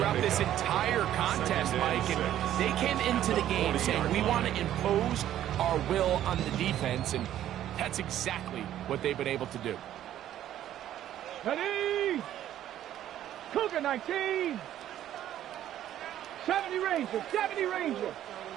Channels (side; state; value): left; quieter; 11.9 dB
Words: this entire contest, Mike. And they came into the game saying, we want to impose our will on the defense, and that's exactly what they've been able to do. Ready. Cougar 19. 70 Rangers. 70 Rangers.